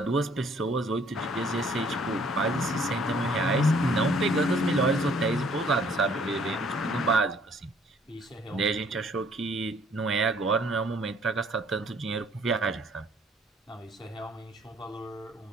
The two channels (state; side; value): normal; both; correlation 0.60